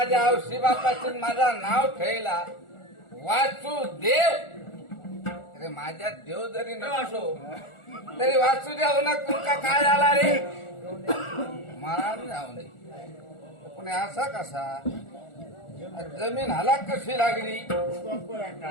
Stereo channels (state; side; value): late; right; 1.4 ms